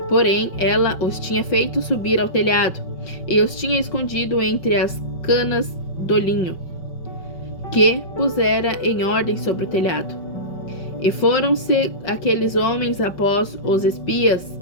Porém, ela os tinha feito subir ao telhado, e os tinha escondido entre as canas do linho, que pusera em ordem sobre o telhado. E foram-se aqueles homens após os espias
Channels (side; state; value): right; late; 5.3 ms